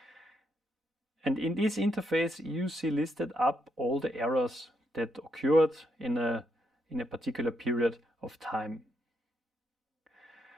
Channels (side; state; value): both; normal; correlation 0.79